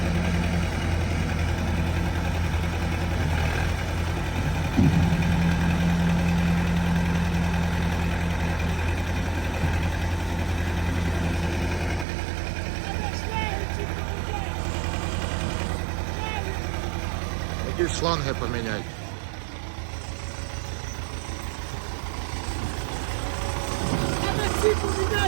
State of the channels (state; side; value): drops out; left; at 12.1 s